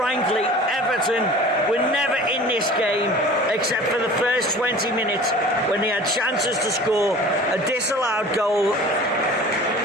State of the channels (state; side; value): normal; both; correlation 0.42